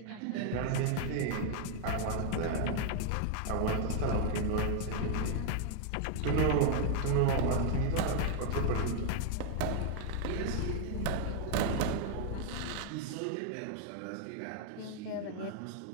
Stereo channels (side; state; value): both; different; correlation 0.00